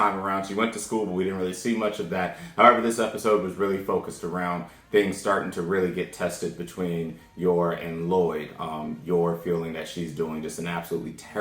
around. She went to school, but we didn't really see much of that. However, this episode was really focused around things starting to really get tested between Yor and Lloyd. Yor feeling that she's doing just an absolutely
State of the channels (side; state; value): both; identical; correlation 1.00